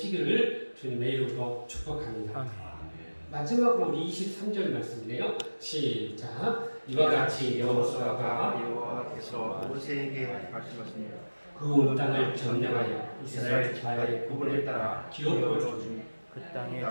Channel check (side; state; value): both; inverted; correlation -1.00